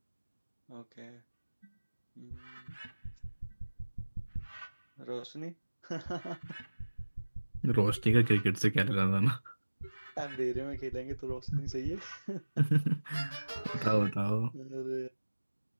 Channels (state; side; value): inverted; both; correlation -1.00